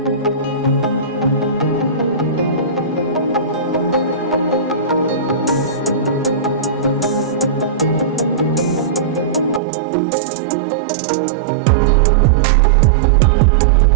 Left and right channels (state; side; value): drops out; left; at 9.6 s